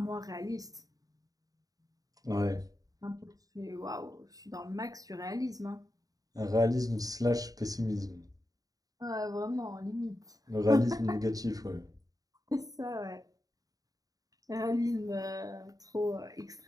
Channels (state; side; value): late; left; 0.18 ms